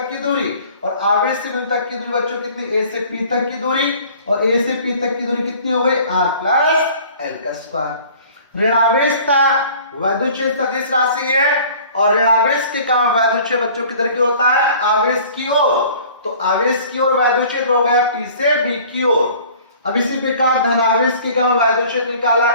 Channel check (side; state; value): both; inverted; correlation -0.49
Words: की दूरी, और आवेश से बिंदु तक की दूरी बच्चों कितनी, a से p तक की दूरी, और a से p तक की दूरी कितनी हो गई, r प्लस l का स्क्वायर। ऋणावेश था, वैद्युत क्षेत्र सदिश राशि है, और ऋणावेश के कारण वैद्युत क्षेत्र बच्चों किधर की होता है, आवेश की ओर, तो आवेश की ओर वैद्युत क्षेत्र हो गया p से b की ओर। अब इसी प्रकार धनावेश के कारण वैद्युत क्षेत्र निकाला,